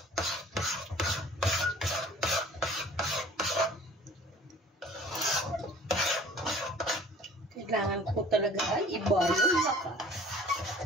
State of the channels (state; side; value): normal; both; correlation 0.49